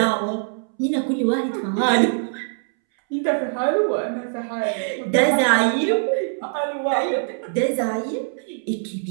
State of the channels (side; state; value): left; silent; 64 dB below the other